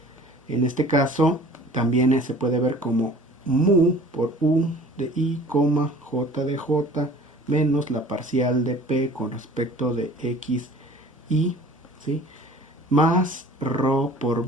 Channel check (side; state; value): both; normal; correlation 0.47